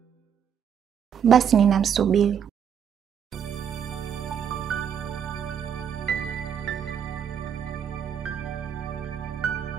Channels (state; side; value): quieter; left; 8.1 dB